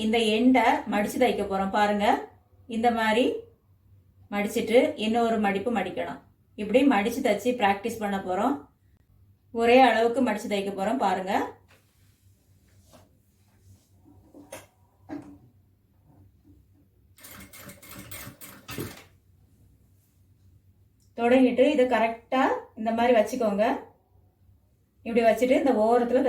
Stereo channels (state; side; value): identical; both; correlation 1.00